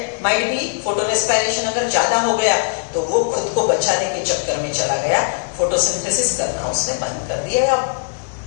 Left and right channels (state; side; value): silent; right; digital silence